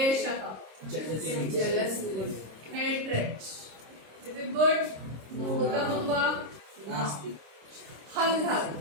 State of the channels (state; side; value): late; left; 26 ms